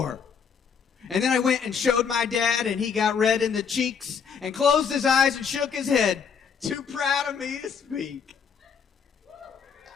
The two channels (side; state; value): right; quieter; 6.7 dB